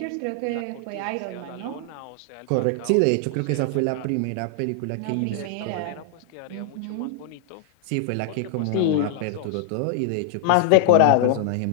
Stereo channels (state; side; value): different; both; correlation -0.01